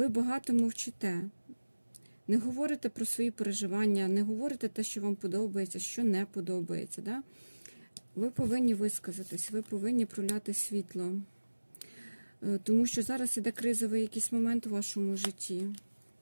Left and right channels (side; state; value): both; inverted; correlation -1.00